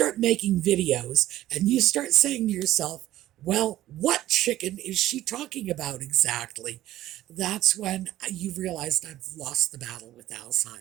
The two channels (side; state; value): left; quieter; 14.4 dB